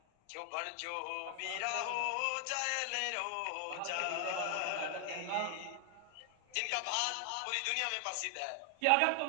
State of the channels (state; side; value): different; both; correlation 0.00